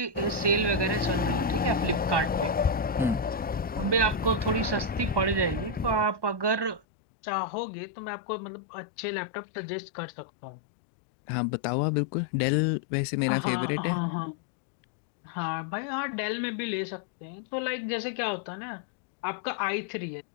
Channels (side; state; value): right; drops out; at 6.8 s